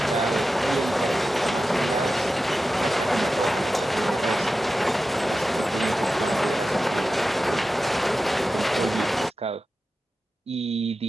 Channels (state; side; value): normal; both; correlation 0.93